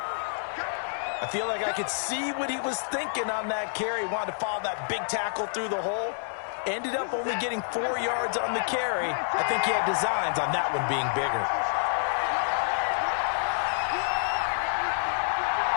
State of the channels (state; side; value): silent; right; digital silence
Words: I feel like I could see what he was thinking on that carry. Wanted to follow that big tackle through the hole. Ended up only getting 4 yards on the carry. I think he had designs on that one being bigger.